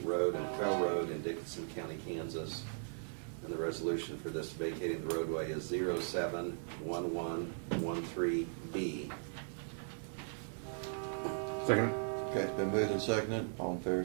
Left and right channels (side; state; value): left; silent; digital silence